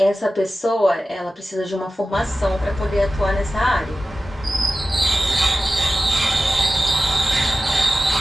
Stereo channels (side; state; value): both; normal; correlation 0.94